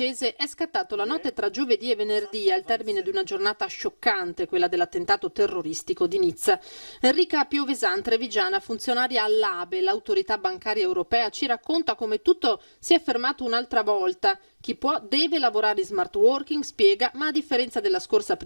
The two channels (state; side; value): inverted; both; correlation -1.00